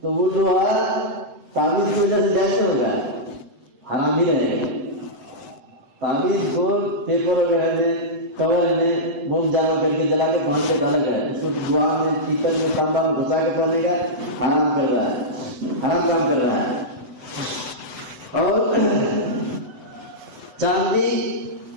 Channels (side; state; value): left; late; 7.9 ms